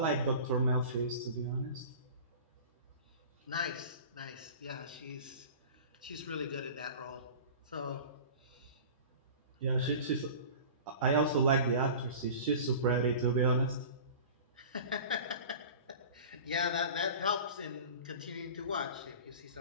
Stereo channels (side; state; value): both; inverted; correlation -0.38